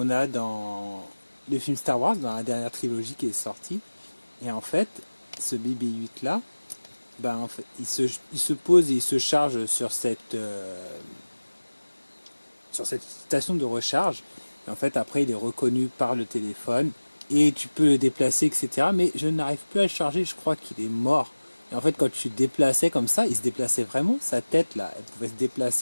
a dans le film Star Wars, dans la dernière trilogie qui est sortie. Et en fait, ce BB-8 là, ben, en fait, il se pose et il se charge sur cette station de recharge. Et en fait, après, il est reconnu par le téléphone et tu peux le déplacer, etc. Mais je n'arrive plus à le charger, je crois qu'il est mort. Et en fait, quand tu déplaçais comme ça, il se déplaçait vraiment, sa tête là, elle pouvait se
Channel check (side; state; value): both; inverted; correlation -1.00